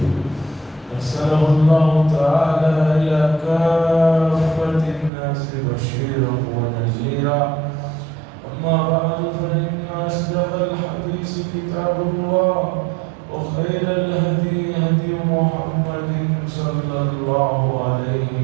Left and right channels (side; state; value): left; drops out; at 5.1 s